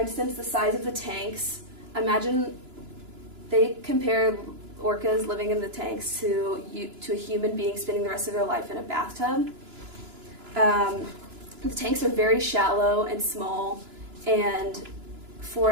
the size of the tanks. Imagine they compare orcas living in the tanks to a human being spending the rest of their life in a bathtub. The tanks are very shallow and small, and for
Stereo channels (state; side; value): late; left; 2.9 ms